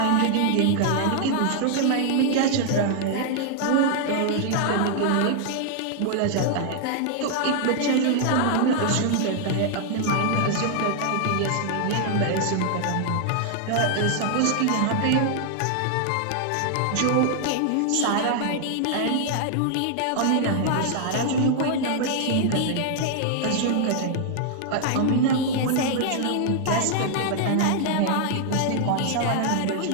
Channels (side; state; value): both; different; correlation 0.00